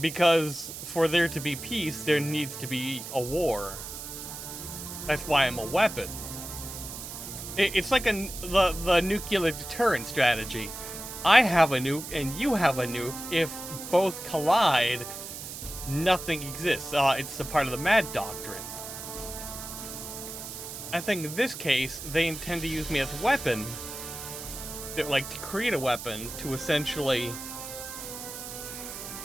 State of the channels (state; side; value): noise; right; hiss, 9 dB below the sound